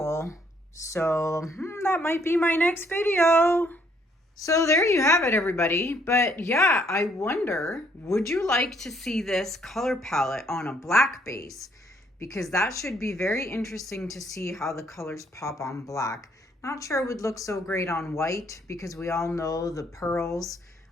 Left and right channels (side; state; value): both; normal; correlation 0.67